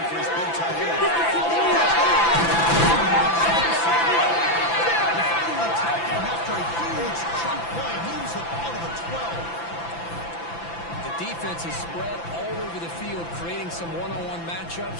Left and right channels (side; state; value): right; late; 5.9 ms